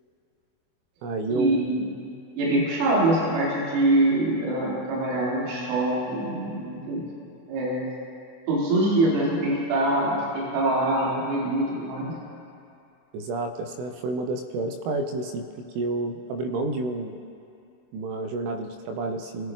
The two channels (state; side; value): late; left; 24 ms